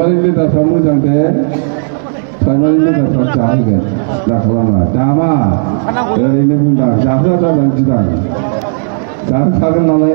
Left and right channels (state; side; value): silent; left; digital silence